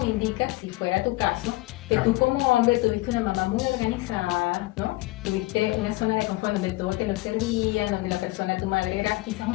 indica, si fuera tu caso, que tú como hombre tuviste una mamá muy organizada, ¿no? Tuviste una zona de confort donde todo te lo servía, donde la persona, tu madre, era quizás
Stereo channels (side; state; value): right; quieter; 20.2 dB